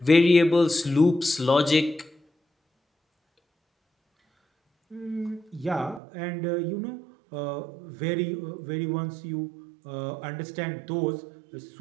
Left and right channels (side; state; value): left; drops out; at 6.0 s